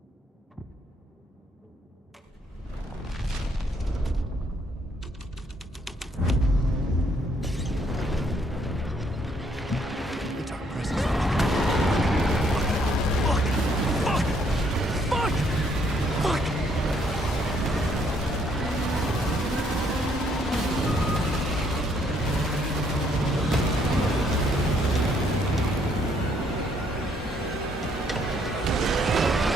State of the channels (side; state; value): both; normal; correlation 0.68